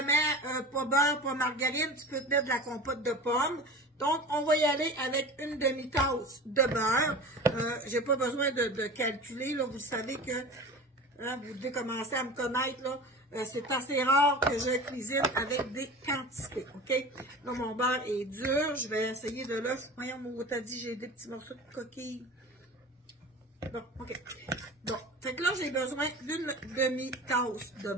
pas beurre, pas margarine, tu peux te mettre de la compote de pommes. Donc, on va y aller avec une demi-tasse de beurre. J'ai pas besoin de calculer, là. Vous savez que, hein, vous devez commencer à me connaître, là. C'est assez rare que je cuisine avec des quantités, ok? Là, mon beurre est dur. Je vais essayer de l'œuf. Voyons, mon t'as dit, j'ai des petits morceaux de coquille. Bon, ok. Bon, fait que là, j'ai besoin d'une demi-tasse de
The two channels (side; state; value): both; normal; correlation 0.34